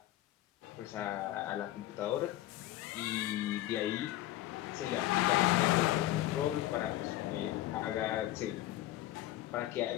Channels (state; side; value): quieter; right; 15.1 dB